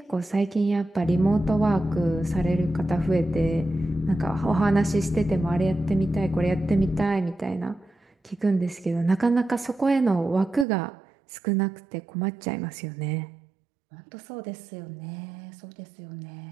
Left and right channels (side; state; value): left; drops out; at 10.7 s